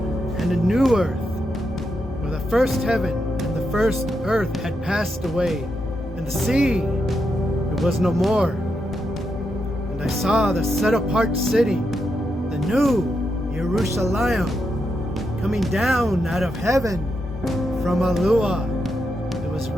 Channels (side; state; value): both; normal; correlation 0.84